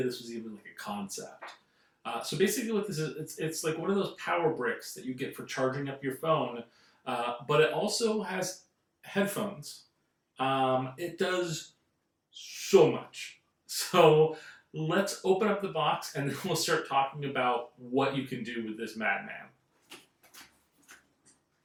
this was even like a concept. So basically what this is, it's like one of those power bricks that you get for charging up your phone, but it also has headphones. It does so much. So let's open up the box and then we'll start talking about what you can do with this madman.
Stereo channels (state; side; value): identical; both; correlation 1.00